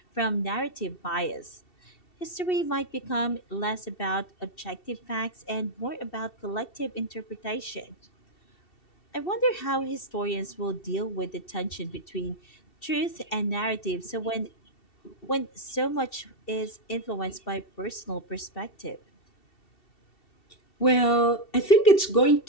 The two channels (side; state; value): right; late; 2.7 ms